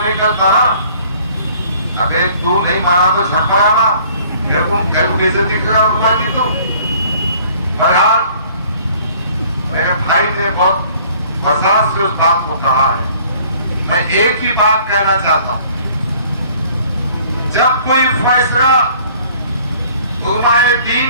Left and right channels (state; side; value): inverted; both; correlation -0.54